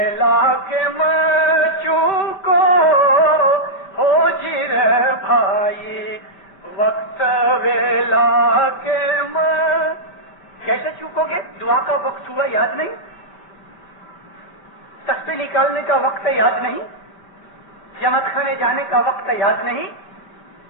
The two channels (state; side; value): late; right; 5.2 ms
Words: کے چوکو ہو جی رے بھائی, وقت ویلا کے کیسے چوکو گے؟ دعا کا وقت ہوا یاد نہیں, تسبیح نکالنے کا وقت یاد نہیں, جمع کھانے جانے کا وقت یاد نہیں.